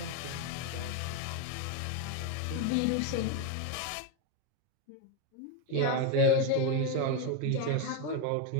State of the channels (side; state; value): both; different; correlation 0.02